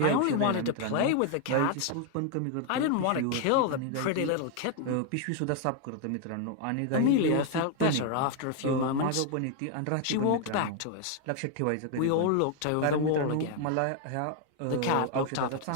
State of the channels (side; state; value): both; different; correlation 0.00